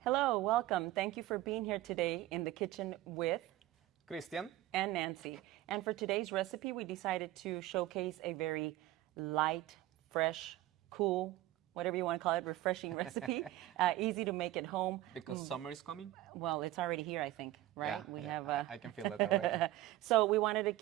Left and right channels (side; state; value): left; quieter; 15.7 dB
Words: Hello, welcome. Thank you for being here today in the kitchen with Christian and Nancy. And for today's recipe, we decided to showcase a very light, fresh, cool, whatever you want to call it, refreshing recipe. Easy to make at home. because summer is coming. Well, it's already here, I think, right? I can feel it already. So we wanted to